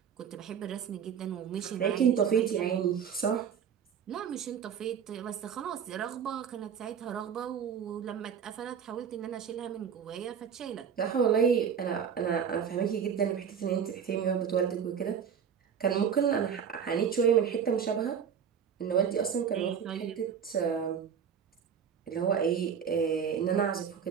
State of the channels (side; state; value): left; quieter; 7.5 dB